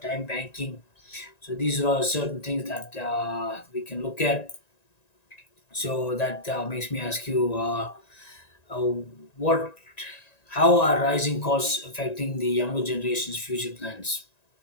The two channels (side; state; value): right; late; 1.9 ms